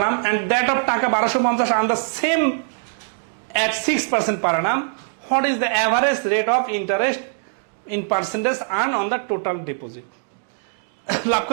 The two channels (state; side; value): silent; left; 64 dB below the other